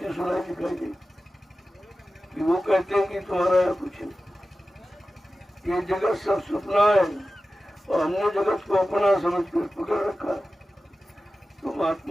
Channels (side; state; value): both; normal; correlation 0.95